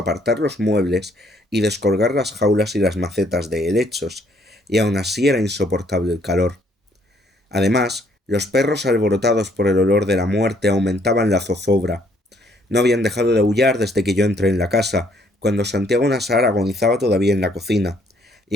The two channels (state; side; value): normal; both; correlation 0.66